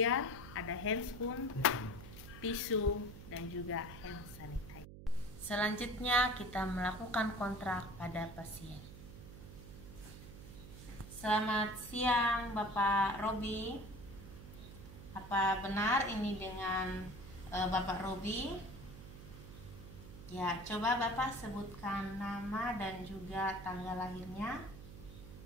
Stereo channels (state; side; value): noise; right; hum, 14 dB below the sound